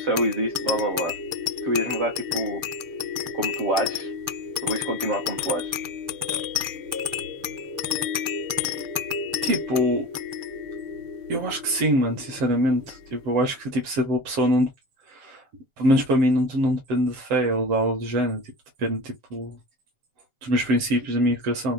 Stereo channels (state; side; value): late; left; 7.4 ms